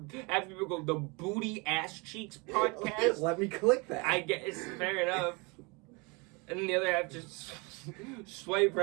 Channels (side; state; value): left; quieter; 28.8 dB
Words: half people go the Booty Asscheecks Podcast. Let me click that. I guess fair enough. And then the other half just swipe